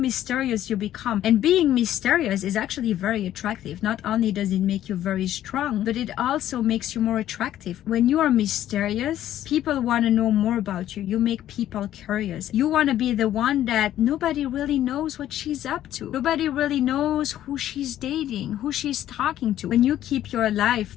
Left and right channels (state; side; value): quieter; right; 12.3 dB